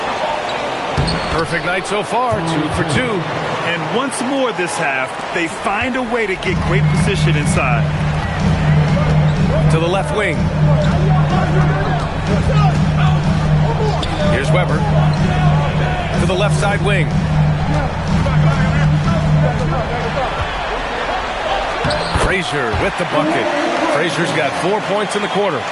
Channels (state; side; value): identical; both; correlation 1.00